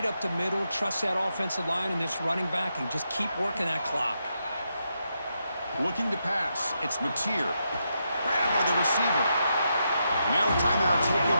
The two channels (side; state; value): both; inverted; correlation -0.83